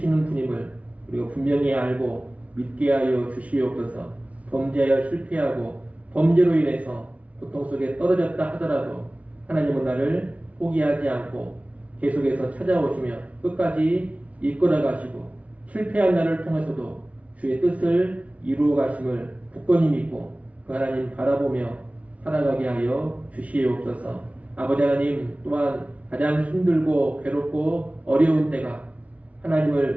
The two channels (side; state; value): left; late; 0.066 ms